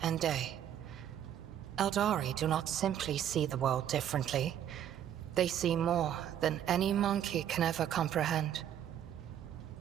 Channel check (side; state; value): left; quieter; 10.3 dB